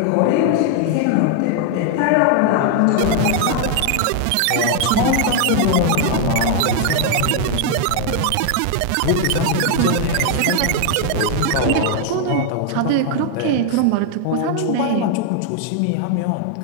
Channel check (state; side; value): different; both; correlation 0.00